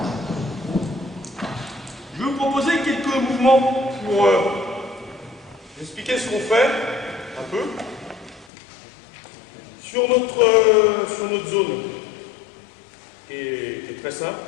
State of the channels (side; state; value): right; drops out; at 8.5 s